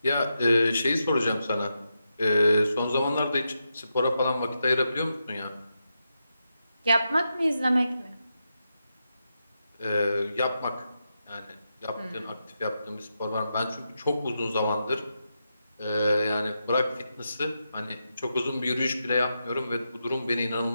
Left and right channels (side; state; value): both; inverted; correlation -0.86